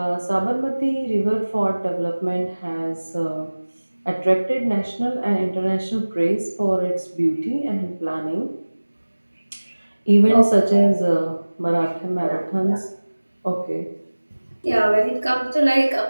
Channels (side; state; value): both; inverted; correlation -1.00